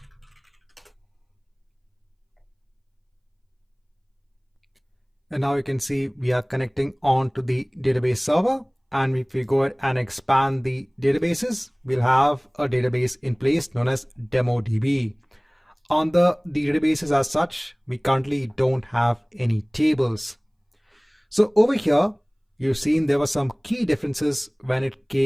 And now you can see we are connecting on to the database server. and if we go ahead and expand the databases, we'll have a database in place known as DemoDB. On the databases as such, we currently don't have any tables. So over here, you've seen there were some key differences when it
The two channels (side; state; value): both; identical; correlation 1.00